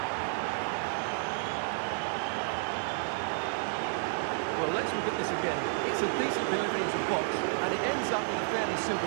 Well, let's look at this again. It's a decent delivery into the box, and it ends up with a fairly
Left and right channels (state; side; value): silent; left; digital silence